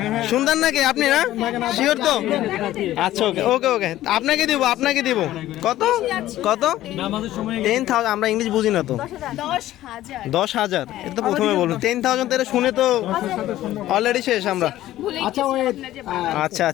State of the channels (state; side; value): quieter; right; 14.3 dB